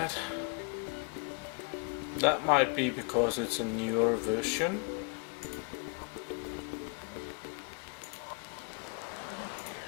might be because it's a newer version.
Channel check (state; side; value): quieter; right; 32.4 dB